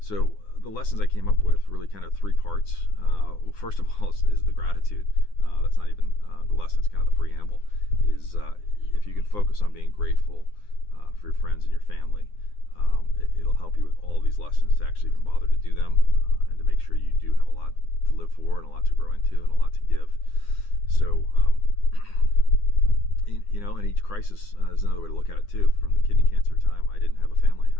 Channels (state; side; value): late; right; 9.8 ms